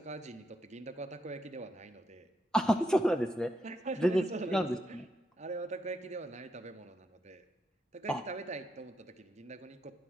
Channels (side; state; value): both; normal; correlation 0.81